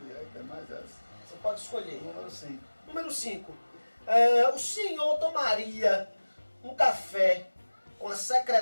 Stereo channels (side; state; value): both; inverted; correlation -1.00